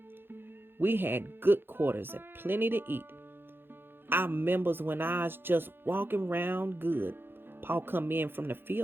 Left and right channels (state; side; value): late; left; 0.10 ms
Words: We had good quarters and plenty to eat. I remembers when I was just walking round good, Paul come in from the